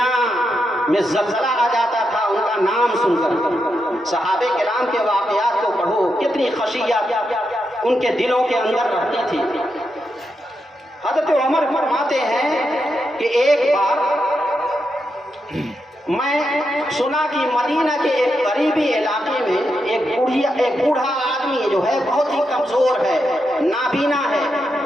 میں زلزلہ آ جاتا تھا ان کا نام سن کر۔ صحابہ کرام کے واقعات کو پڑھو، کتنی خشیت ان کے دلوں کے اندر رہتی تھی۔ حضرت عمر فرماتے ہیں کہ ایک بار میں سنا کہ مدینہ کے ایک قریبی علاقے میں ایک بوڑھا آدمی جو ہے بہت ہی کمزور ہے، نابینا ہے،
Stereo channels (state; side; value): normal; both; correlation 0.84